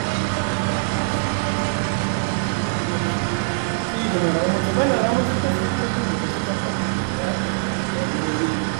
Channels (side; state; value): left; silent; digital silence